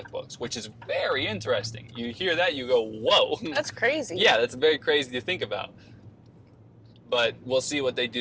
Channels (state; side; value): identical; both; correlation 1.00